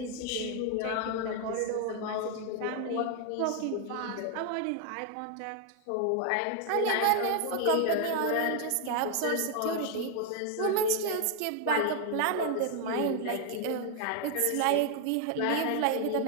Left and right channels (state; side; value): different; both; correlation 0.00